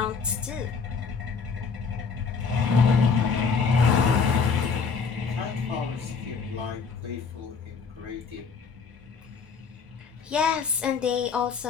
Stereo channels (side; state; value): right; quieter; 5.4 dB